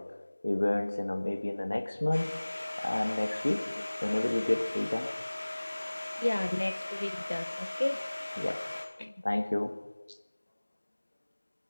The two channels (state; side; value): inverted; both; correlation -1.00